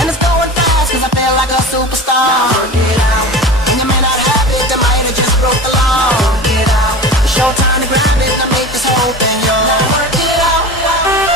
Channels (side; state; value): both; normal; correlation 0.33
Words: it's going fast cause I feel like a superstar. Work it out. And you may not have it, they might have just broke the law. Work it out. It's your time to grab it and make this whole thing yours. Now work it out.